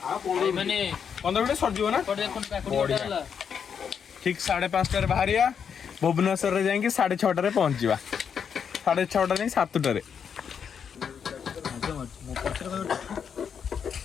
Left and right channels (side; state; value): right; quieter; 7.2 dB